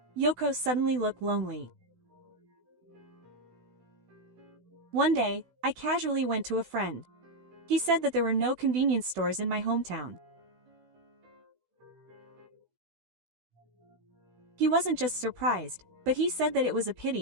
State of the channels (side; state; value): left; late; 16 ms